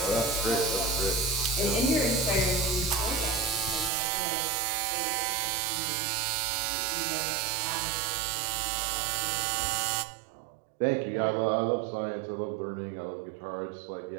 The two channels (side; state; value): left; drops out; at 3.9 s